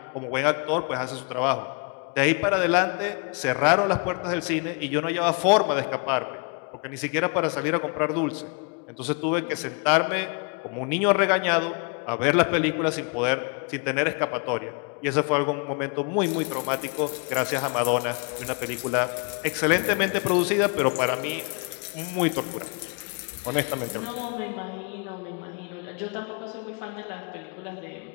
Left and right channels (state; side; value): quieter; right; 35.7 dB